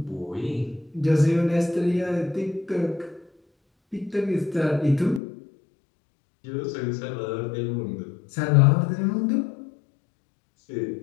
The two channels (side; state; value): right; drops out; at 5.2 s